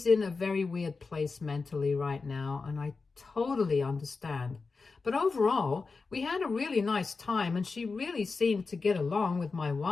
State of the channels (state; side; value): quieter; right; 4.3 dB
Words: in a very weird place mentally right now, and I totally understand. But overall, we had a really nice time, and she really seemed to get along with my